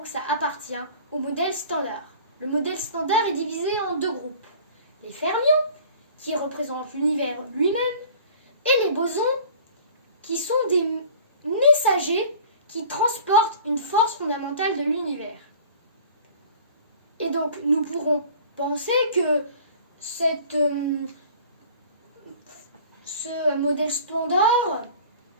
ça appartient au modèle standard. Le modèle standard est divisé en 2 groupes. Les fermions, qui représentent l'univers lui-même, et les bosons, qui sont des messagers qui transportent une force fondamentale de l'univers. Et donc, nous pourrons penser que ce modèle standard,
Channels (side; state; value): both; inverted; correlation -0.46